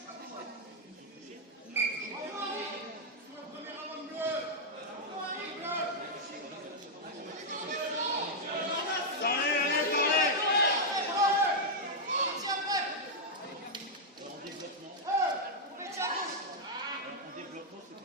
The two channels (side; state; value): both; normal; correlation -0.04